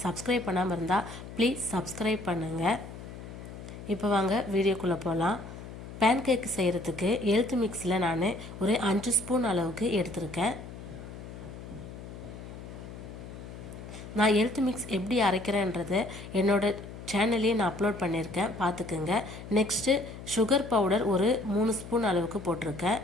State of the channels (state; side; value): noise; left; hum, 12 dB below the sound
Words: சப்ஸ்கிரைப் பண்ணாமல் இருந்தால் ப்ளீஸ் சப்ஸ்கிரைப் பண்ணுங்கள். இப்போ வாங்க வீடியோக்குள்ளே போகலாம். பேன் கேக்கு செய்கிறதுக்கு ஹெல்த் மிக்ஸில் நான் ஒரு 5 ஸ்பூன் அளவுக்கு எடுத்திருக்கேன். நான் ஹெல்த் மிக்ஸ் எப்படி அரைக்கிறேன்றதை என்னோட சேனல்லையே நான் அப்லோட் பண்ணியிருக்கேன், பார்த்துக்குங்க. நெக்ஸ்ட்டு சுகர் பவுடர் ஒரு 3 ஸ்பூன் அளவுக்கு போட்டிருக்கேன்.